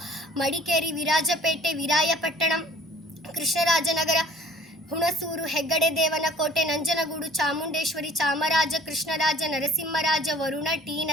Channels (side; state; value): both; normal; correlation 0.51